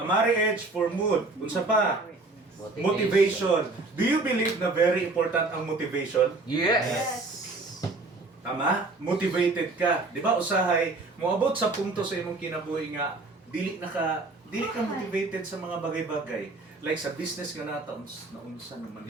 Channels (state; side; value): quieter; left; 3.4 dB